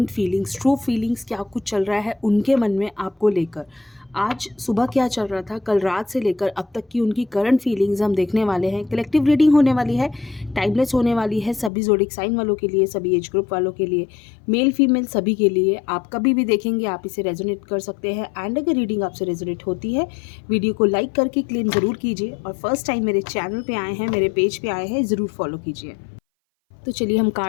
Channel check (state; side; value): drops out; right; at 11.7 s